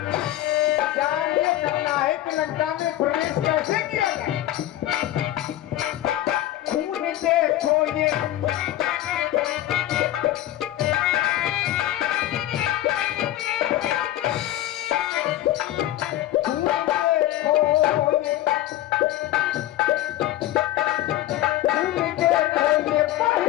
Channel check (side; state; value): right; quieter; 14.2 dB